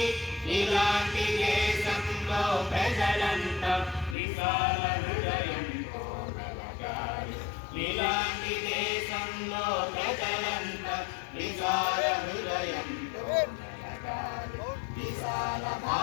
ఇలాంటి దేశంలో ప్రజలంతా విశాల హృదయంతో మెలగాలి ఇలాంటి దేశంలో ప్రజలంతా విశాల హృదయంతో మెలగాలి విశాల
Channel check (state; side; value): drops out; right; at 4.2 s